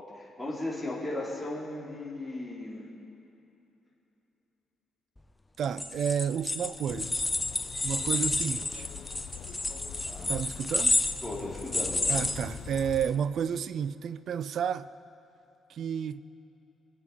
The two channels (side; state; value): both; normal; correlation 0.82